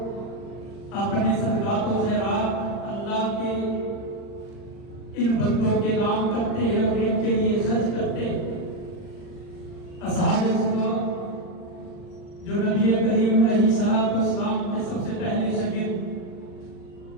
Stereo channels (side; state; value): right; late; 39 ms